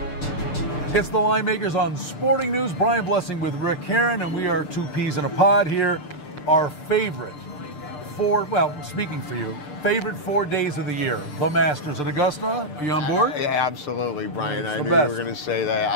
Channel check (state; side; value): late; right; 6.7 ms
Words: It's the Linemakers on Sporting News. Brian Blessing with Rick Herron, and we are two peas in a pod here. Our favorite speaking for you, favorite 4 days of the year. The Masters at Augusta. Are you on board? Yeah, absolutely, Brian. I knew you were going to say that.